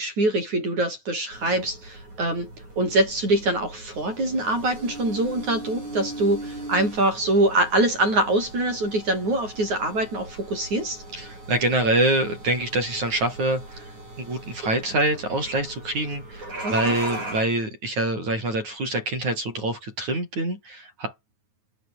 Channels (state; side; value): late; left; 9.4 ms